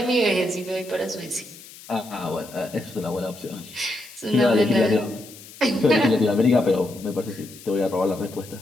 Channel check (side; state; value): left; noise; hiss, 18 dB below the sound